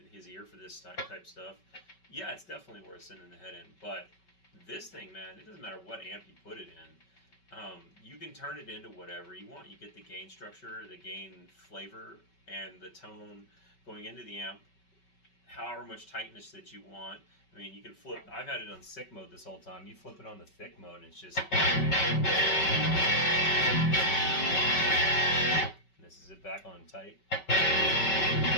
his ear for this type stuff, yeah, it's definitely worth sending the head in. But this thing, man, it doesn't matter what amp you put it in. You can turn it into whatever you want. You get the gain structure, the gain flavor, and the tone going into the amp, however much tightness that you want. I mean, you can flip. I've had it on sick mode this whole time. You flip it on the thick mode, and it's just. And this is it back on tight.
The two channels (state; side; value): late; right; 5.3 ms